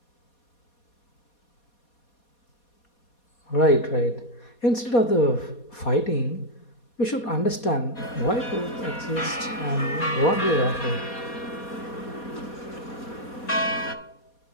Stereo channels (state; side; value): late; right; 4.2 ms